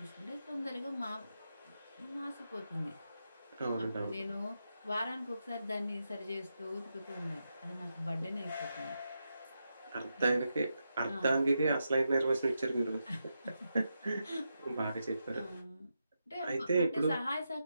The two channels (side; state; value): both; inverted; correlation -0.86